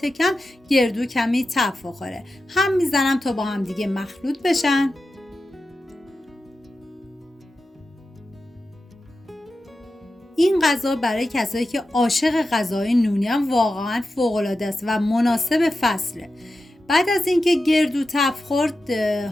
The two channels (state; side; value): normal; both; correlation 0.92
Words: کم گردو کمی تف بخوره. هم میزنم تا با هم دیگه مخلوط بشن. این غذا برای کسایی که عاشق غذای نونی هم واقعا فوق العاده است و مناسب فصله. بعد از اینکه گردو تف خورد،